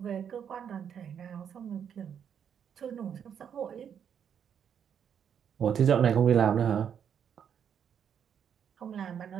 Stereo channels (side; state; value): left; quieter; 8.2 dB